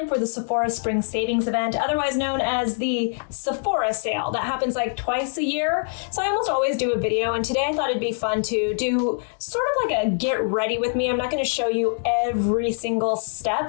for the Sephora Spring Savings Event, otherwise known as the Sephora Sale. That happens like twice a year, so I almost always do a video, and today I thought it'd be fun to do sort of like a get ready with me. I'm not going to show you every single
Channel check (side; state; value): right; silent; digital silence